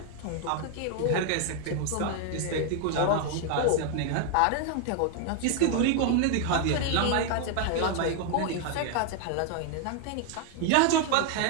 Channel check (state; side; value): different; both; correlation 0.01